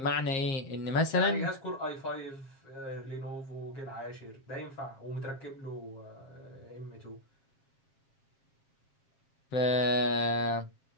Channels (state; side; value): late; right; 7.4 ms